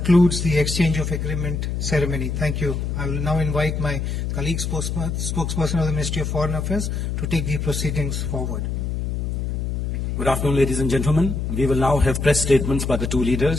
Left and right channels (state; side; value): noise; left; hum, 2 dB below the sound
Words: the exchange of agreement ceremony. Thank you. I will now invite my colleague spokesperson of the Ministry of Foreign Affairs to take the proceedings forward. Good afternoon, ladies and gentlemen. We will now have press statements by the two